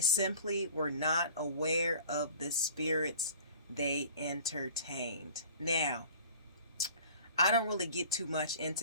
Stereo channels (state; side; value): inverted; both; correlation -0.45